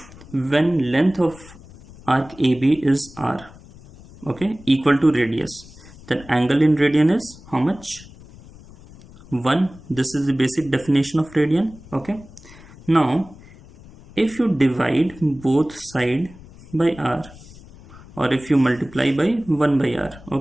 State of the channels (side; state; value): left; noise; rumble, 21 dB below the sound